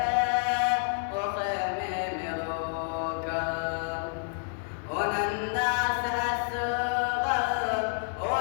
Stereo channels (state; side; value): silent; right; digital silence